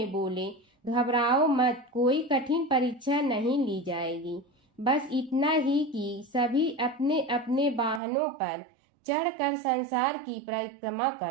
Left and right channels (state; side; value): drops out; left; at 8.0 s